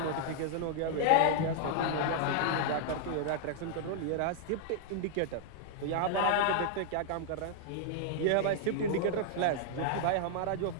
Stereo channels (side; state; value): both; different; correlation -0.01